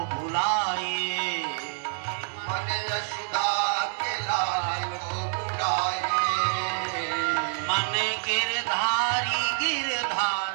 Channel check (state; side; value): silent; left; 60 dB below the other